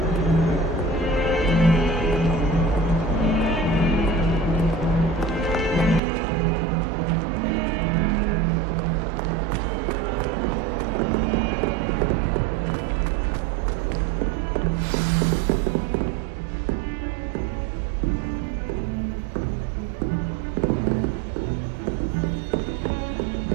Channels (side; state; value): left; drops out; at 6.0 s